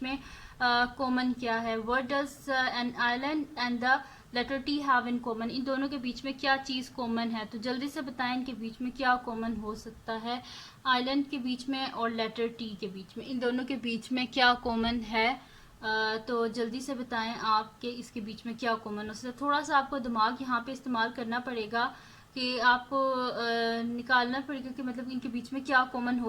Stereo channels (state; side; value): identical; both; correlation 1.00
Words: में कॉमन क्या है। What does an island and the letter T have in common, इन दोनों के बीच में क्या चीज़ कॉमन है। तो जल्दी से बताएं इनके बीच में क्या कॉमन हो सकता है। आइलैंड के बीच में और लेटर टी के बीच में, इन दोनों के बीच में क्या कॉमन है। तो जल्दी से बताएं आपके इसके बीच में क्या कॉमन हो सकता है। थोड़ा सा आपको दिमाग यहाँ पे इस्तेमाल करना पड़ेगा कि आपको निकालना पड़ेगा कि मतलब इनके बीच में क्या कॉमन